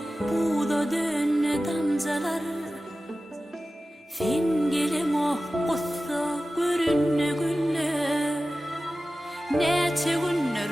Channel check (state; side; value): normal; both; correlation 0.95